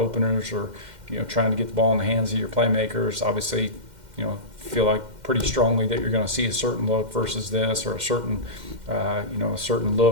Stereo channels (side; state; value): left; late; 2.1 ms